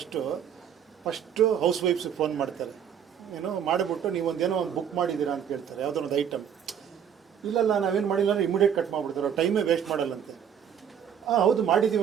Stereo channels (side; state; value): left; quieter; 8.5 dB